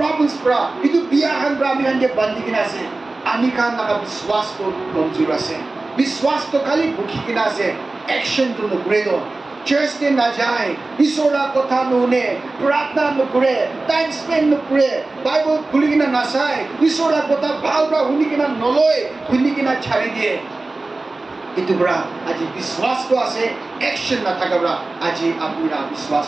प्रा इतु बियाहन प्रा आमी खानके बंदी किना আছে आमी खान नाका विश्वास तो कमजोर আছে विश्वास तो खाली भूखी किना আছে एक्शन तो नकरे दो चर्च ते ना जाए ईश्वरा कथा नुने प्रार्थना नकरे टाइम स्पेंड नकरे बाइबल खुली किना ना चाय ईश्वरा कथा भाल प्रा हुनी किना नलय हुनी किना छाड़ी दिए इतु प्रा আজি विश्वास तो আছে एक्शन ना थाका प्रा আজি आपनिरा विश्वास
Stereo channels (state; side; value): quieter; left; 3.2 dB